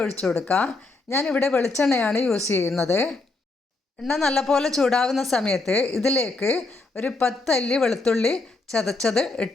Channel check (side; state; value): right; quieter; 3.4 dB